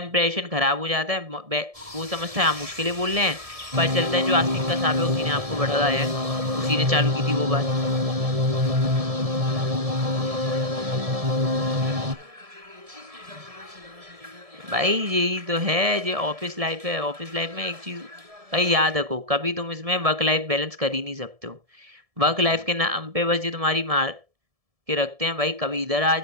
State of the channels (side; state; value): left; late; 1.7 ms